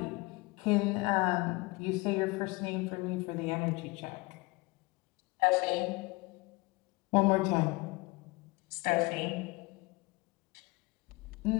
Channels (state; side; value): quieter; right; 24.6 dB